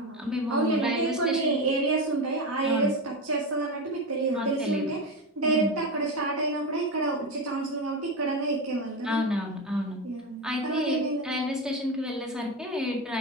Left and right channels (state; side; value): normal; both; correlation 0.18